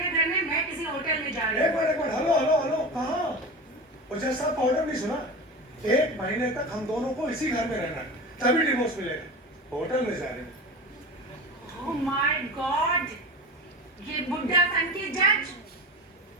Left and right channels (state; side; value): normal; both; correlation 0.29